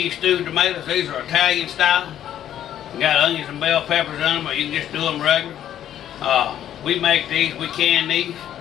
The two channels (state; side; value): quieter; right; 10.9 dB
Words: stewed tomatoes. These are Italian style. We got onions and bell peppers in them, or you can just do them regular. We make these, we can these,